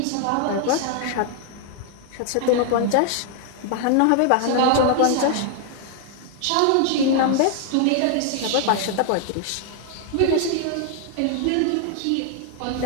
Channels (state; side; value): different; both; correlation 0.00